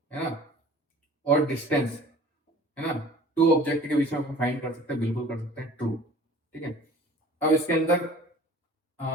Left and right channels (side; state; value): both; normal; correlation 0.46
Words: है ना, और डिस्टेंस, है ना, टू ऑब्जेक्ट के बीच में अपन फाइंड कर सकते हैं, बिल्कुल कर सकते हैं, ट्रू, ठीक है। अब इसके अंदर